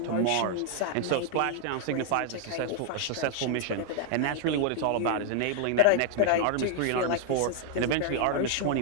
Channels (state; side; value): different; both; correlation 0.00